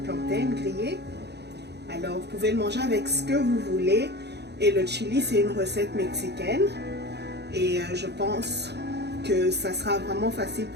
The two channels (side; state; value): left; late; 0.49 ms